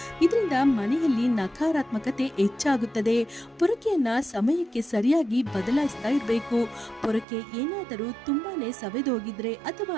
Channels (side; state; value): left; drops out; at 7.2 s